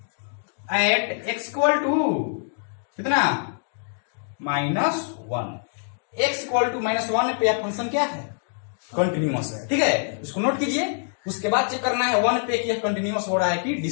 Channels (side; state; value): right; silent; 62 dB below the other